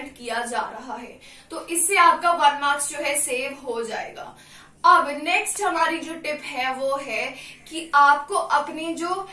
किया जा रहा है। तो इससे आपका 1 मार्क्स जो है सेव हो जाएगा। अब नेक्स्ट हमारी जो टिप है वो है कि आपको अपने जो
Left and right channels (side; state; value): both; identical; correlation 1.00